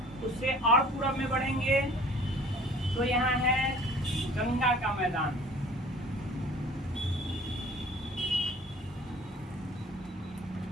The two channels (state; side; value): normal; both; correlation 0.49